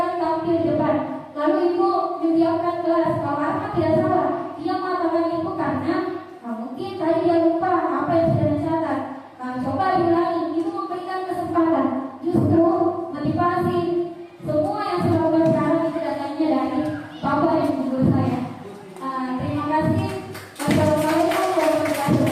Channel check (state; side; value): identical; both; correlation 1.00